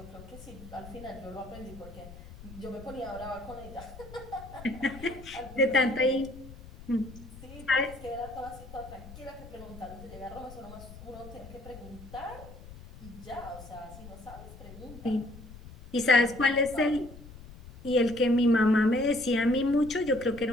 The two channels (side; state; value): left; noise; rumble, 16 dB below the sound